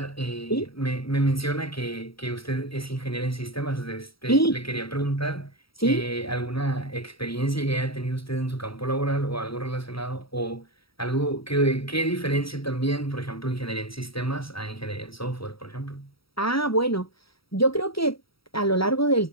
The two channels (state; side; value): late; right; 0.75 ms